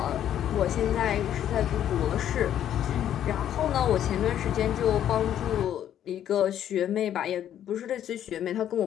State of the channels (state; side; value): quieter; right; 10.6 dB